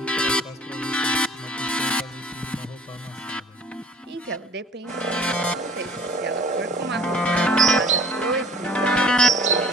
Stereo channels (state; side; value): normal; both; correlation 0.49